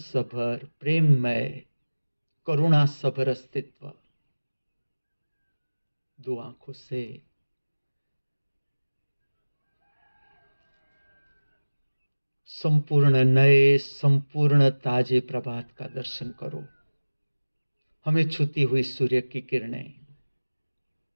प्रेममय, करुणा सभर अस्तित्व। दो आंखों से संपूर्ण नए, संपूर्ण ताजे प्रभात का दर्शन करो। हमें छूती हुई सूर्य की किरणें।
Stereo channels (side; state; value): both; inverted; correlation -1.00